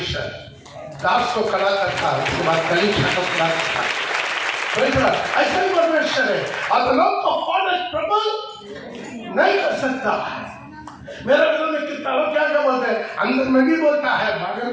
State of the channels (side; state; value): both; identical; correlation 1.00